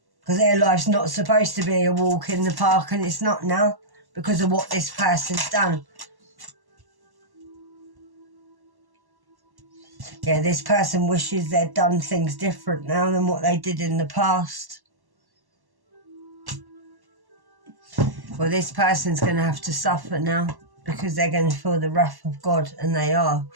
Because their life's not supposed to be a walk in the park, and it's not now because of what this person's done. Yeah, this person wishes they'd done things different now than what they did in the past. Well, this person's going to have to suffer now because they're going to feel the wrath of God, and they are.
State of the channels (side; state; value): left; late; 1.1 ms